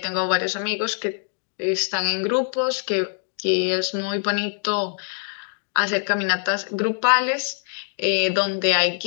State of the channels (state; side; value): silent; right; digital silence